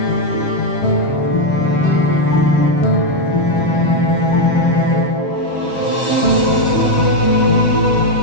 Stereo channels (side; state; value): right; late; 7.3 ms